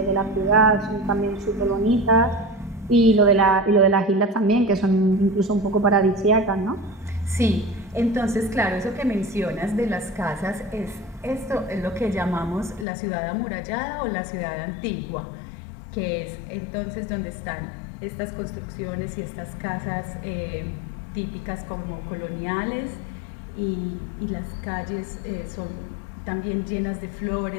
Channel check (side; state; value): right; drops out; at 12.9 s